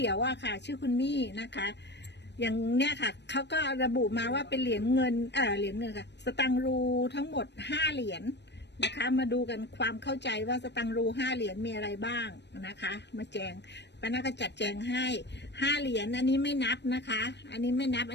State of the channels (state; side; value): late; right; 0.50 ms